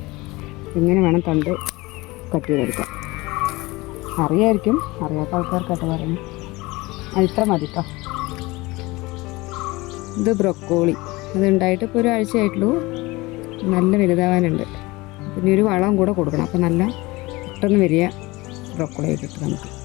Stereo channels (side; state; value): right; quieter; 22.0 dB